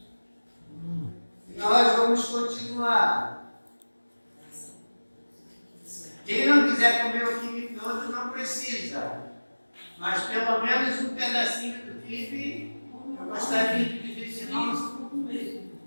e nós vamos continuar. Quem não quiser comer o quibe todo não precisa, mas pelo menos um pedacinho do quibe eu gostaria de dizer.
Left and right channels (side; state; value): both; inverted; correlation -1.00